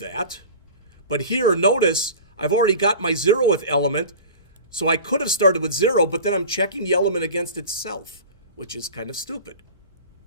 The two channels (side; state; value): both; inverted; correlation -0.37